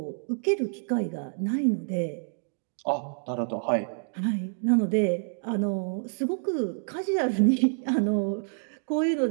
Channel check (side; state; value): left; silent; digital silence